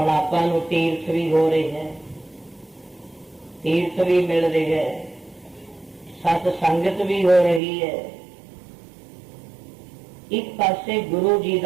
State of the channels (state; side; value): drops out; left; at 7.6 s